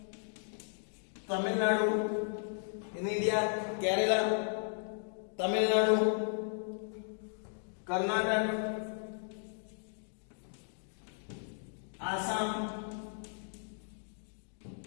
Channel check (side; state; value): right; silent; digital silence